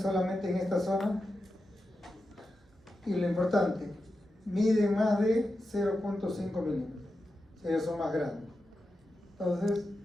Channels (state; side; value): normal; both; correlation 0.90